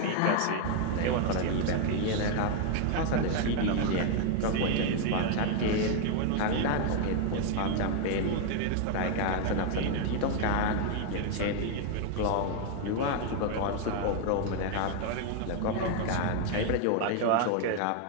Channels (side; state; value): both; different; correlation 0.00